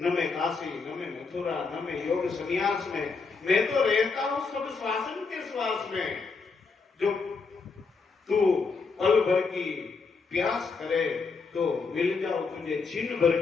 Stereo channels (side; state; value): right; quieter; 4.6 dB